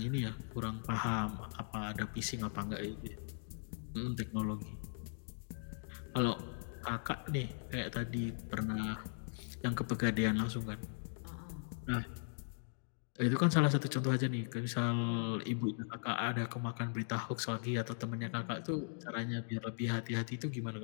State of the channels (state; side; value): silent; right; digital silence